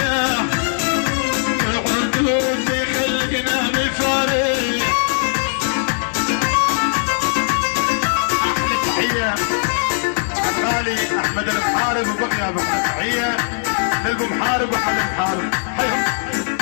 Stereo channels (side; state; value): right; silent; 60 dB below the other